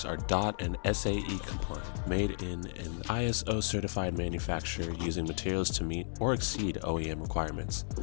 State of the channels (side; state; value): right; silent; digital silence